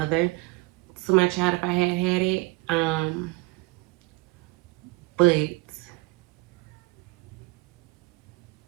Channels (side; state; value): left; quieter; 24.1 dB